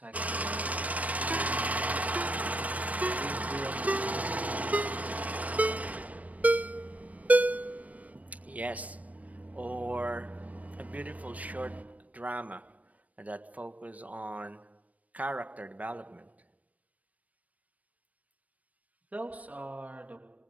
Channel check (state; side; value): late; left; 0.070 ms